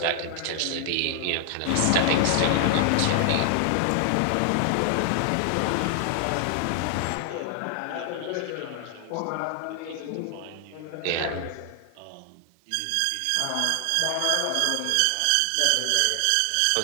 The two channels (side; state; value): both; different; correlation 0.00